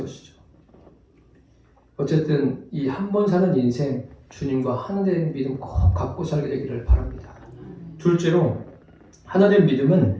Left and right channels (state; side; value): identical; both; correlation 1.00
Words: 어쨌든 이 한 번 사는 인생, 주님과 하나 된 믿음 꼭 갖고 살게 되기를 바랍니다. 둘째로, 하나 된